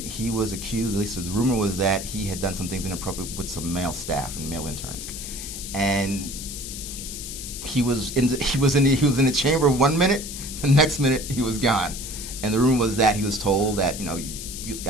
he was accused, at least the rumor was that he had done some things inappropriate with some male staff and male interns. And he was in the chamber 1 minute, the next minute he was gone. And the rumor was that he was told that, you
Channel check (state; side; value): noise; left; hiss, 8 dB below the sound